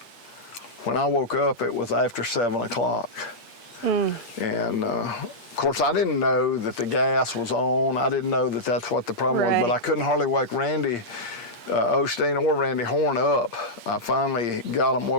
When I woke up, it was after 7 o'clock. And of course, I didn't know that the gas was on. I didn't know that that's what the problem was, but I couldn't hardly wake Randy Osteen or Randy Horn up. I finally got them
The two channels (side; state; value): right; late; 8.5 ms